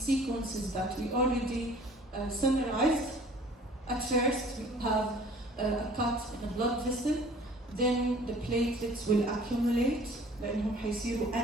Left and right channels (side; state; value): both; normal; correlation 0.51